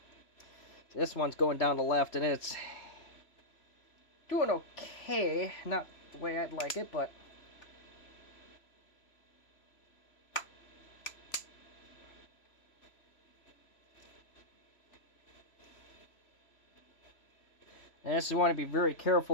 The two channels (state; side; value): late; right; 3.0 ms